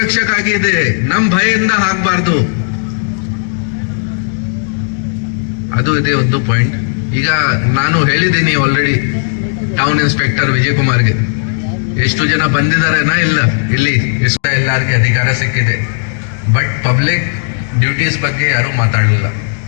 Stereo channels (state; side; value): silent; right; digital silence